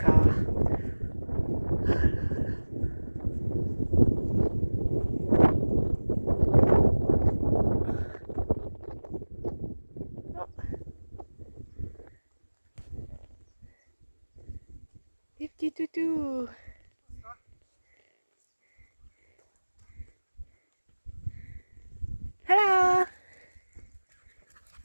Les petits toutous. Hello!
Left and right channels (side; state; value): both; inverted; correlation -1.00